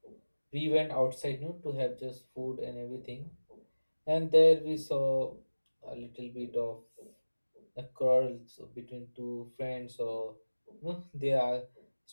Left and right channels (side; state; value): both; inverted; correlation -1.00